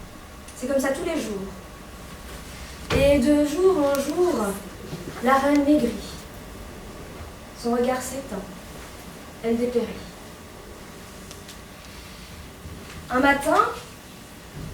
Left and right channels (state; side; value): identical; both; correlation 1.00